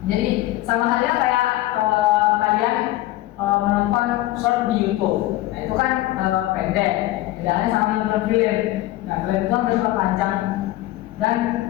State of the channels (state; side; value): quieter; right; 16.3 dB